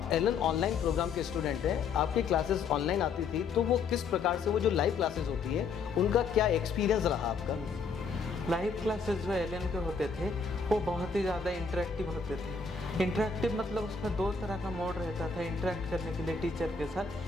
एलन ऑनलाइन प्रोग्राम के स्टूडेंट हैं, आपकी क्लासेस ऑनलाइन आती थी, तो वो किस प्रकार से, वो जो लाइव क्लासेस होती है उनका क्या एक्सपीरियंस रहा आपका? लाइव क्लासेस जो एलन के होते थे वो बहुत ही ज़्यादा इंटरेक्टिव होते थे। इंटरेक्टिव मतलब उसमें दो तरह का मोड रहता था इंटरेक्ट करने के लिए टीचर के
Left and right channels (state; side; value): quieter; right; 5.0 dB